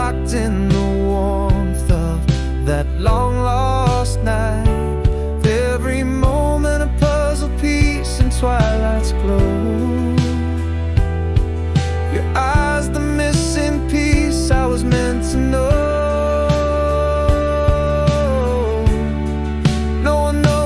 in the warmth of that long lost night. Every moment a puzzle piece in twilight's glow. Your eyes, the missing piece I was meant to know. No one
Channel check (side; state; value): both; identical; correlation 1.00